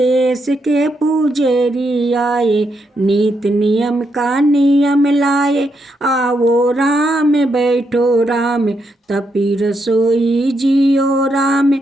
के पुजेरी आए, नीत नियम का नियम लाए, आओ राम बैठो राम, तपी रसोई जियो राम,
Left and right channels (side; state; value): both; normal; correlation 0.80